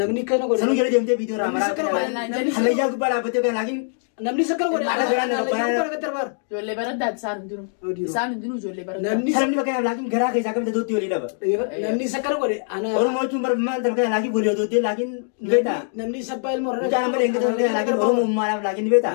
namni kana godhe sanuu jala deemtee viidiyoo raamaraa hallayyaa gubbaa dhaabbattee fakkaata laakiin namni isa kana godhe Ala biraan nama baraan ijoollee baraddaati isaan hundinuu ijoollee baraddaati namni Salamni fakkaata laakiin garaa keessaa kamitti dootti walii dhaba namni isa kana godhe ana Oromoo jechuun bara maal fakkaata laakiin walii dootti laakiin ni beektaa namni isa baay'ee ilmoo Mucaan amma deengata fakkaata laakiin Oromoo uummaadhaaf laakiin ni beektaa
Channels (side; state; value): right; silent; digital silence